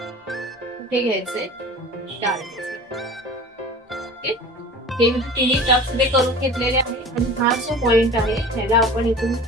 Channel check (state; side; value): normal; both; correlation 0.39